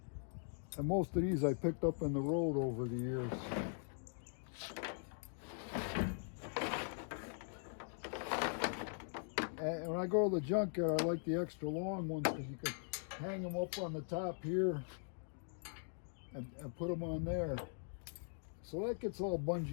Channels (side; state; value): right; silent; digital silence